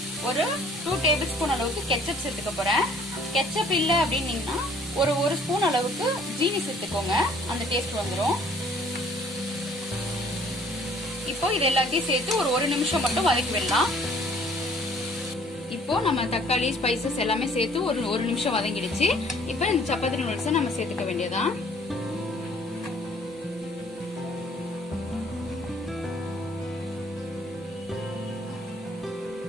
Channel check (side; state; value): both; normal; correlation 0.57